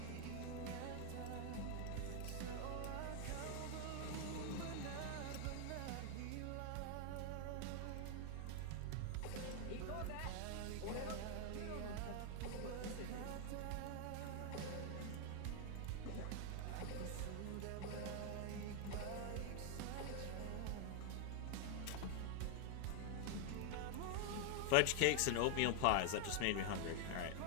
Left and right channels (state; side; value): different; both; correlation 0.00